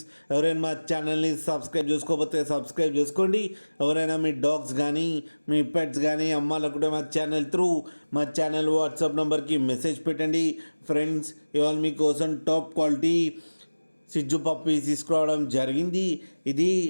ఎవరైనా మా ఛానల్ని సబ్స్క్రైబ్ చేసుకోకపోతే సబ్స్క్రైబ్ చేసుకోండి. ఎవరైనా మీ డాగ్స్ కానీ మీ పెట్స్ కానీ అమ్మాలనుకుంటే మా ఛానల్ వాట్సాప్ నెంబర్కి మెసేజ్ పెట్టండి. ఫ్రెండ్స్, ఇవాళ మీకోసం టాప్ క్వాలిటీ సిజ్జు పప్పి తీసుకురావడం జరిగింది. ఇది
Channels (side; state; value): both; inverted; correlation -1.00